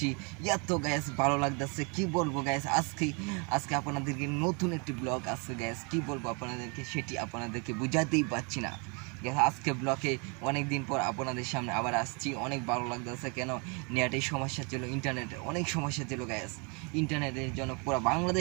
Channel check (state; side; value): quieter; left; 33.3 dB